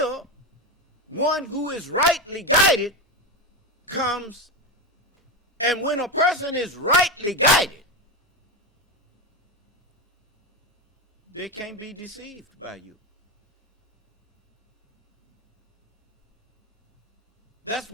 one who is rightly guided comes. And when a person is rightly guided, they can't be deceived by you. That's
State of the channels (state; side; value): normal; both; correlation 0.15